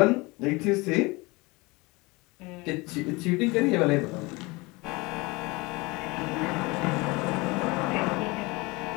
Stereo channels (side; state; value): right; quieter; 24.4 dB